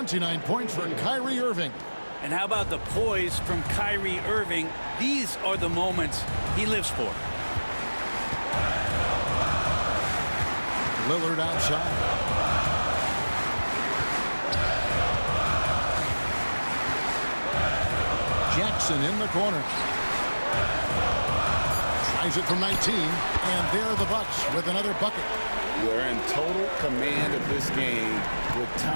points for Kyrie Irving. And how about the poise from Kyrie Irving? These are the moments he lives for. Lillard outside. Jackson in the corner. Tries it from 19, and there are the Bucks with another bucket. They're in total command of this game with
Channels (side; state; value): both; inverted; correlation -1.00